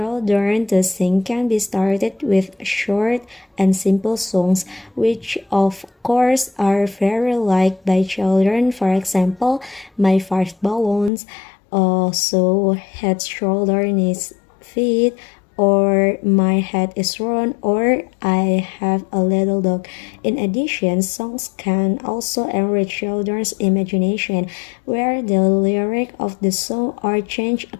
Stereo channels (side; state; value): right; drops out; at 11.1 s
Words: to sing can be started with short and simple songs, which of course are very liked by children. For example, My Five Balloons, so head, shoulder, knees, feet, or My Head is Round, or I Have a Little Dog. In addition, songs can also enrich children's imagination, where the lyric of the song are changed